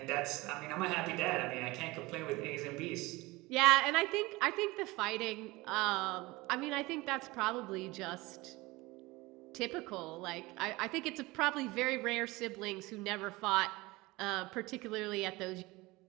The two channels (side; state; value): left; quieter; 21.7 dB